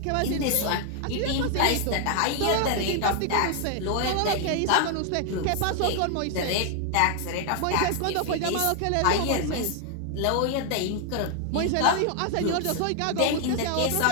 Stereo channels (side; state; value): both; different; correlation 0.00